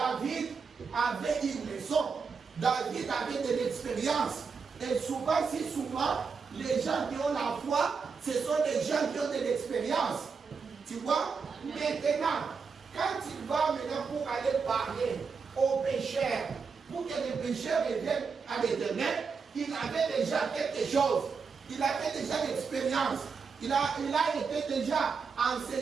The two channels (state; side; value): quieter; left; 5.4 dB